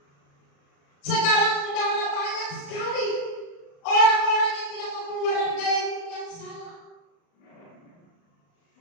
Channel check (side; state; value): right; late; 36 ms